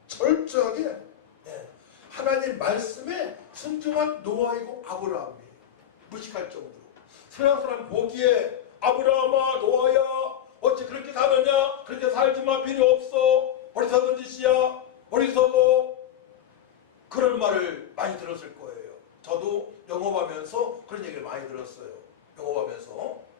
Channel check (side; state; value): right; quieter; 10.5 dB